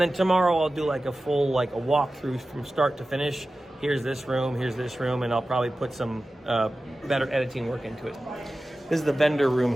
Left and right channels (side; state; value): both; normal; correlation 0.95